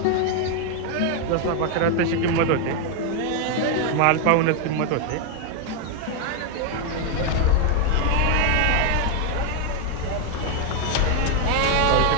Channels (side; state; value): both; different; correlation 0.00